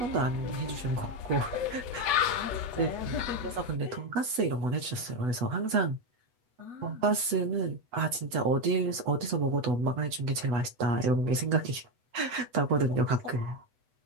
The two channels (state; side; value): late; left; 8.1 ms